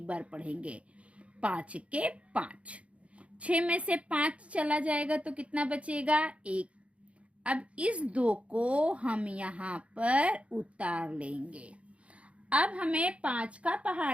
बार पढ़ेंगे। 5 के 5। 6 में से 5 चला जाएगा तो कितना बचेगा? 1। अब इस 2 को हम यहाँ पर उतार लेंगे। अब हमें 5 का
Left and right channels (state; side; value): late; left; 0.062 ms